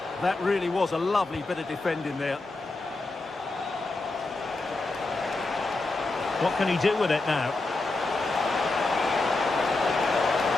That really was a lovely bit of defending there. What can he do with it now?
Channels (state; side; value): quieter; right; 3.2 dB